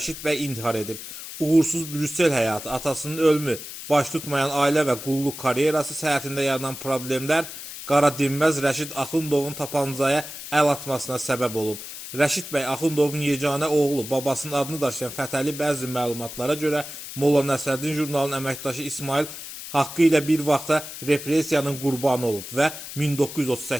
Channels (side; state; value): left; noise; hiss, 11 dB below the sound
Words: bəy intihar edib. Uğursuz Brüssel həyatı, atasının ölümü, baş tutmayan ailə və qulluq karyerası səhhətində yaranan problemlər Qara Dinməz Rəşid Axundovun tapancaya əl atmasına səbəb olub. Rəşid bəy Axundovun yeganə oğlu, babasının adını daşıyan Fətəli bəzi məlumatlara görə Molla Nəsrəddin jurnalının əməkdaşı İsmail haqqı ilə bir vaxta repressiyanın qurbanı olub və